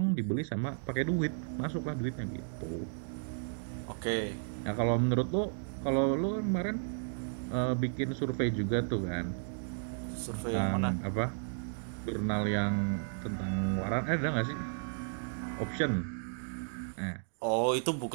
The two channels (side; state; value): left; silent; digital silence